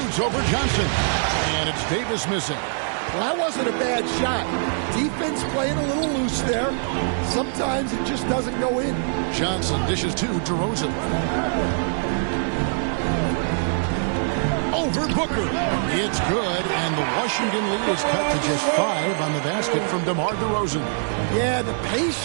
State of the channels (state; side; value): silent; left; digital silence